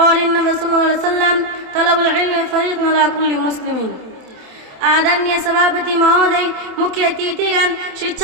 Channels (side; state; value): left; late; 27 ms